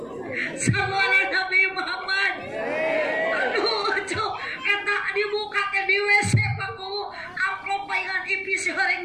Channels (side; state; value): right; noise; rumble, 27 dB below the sound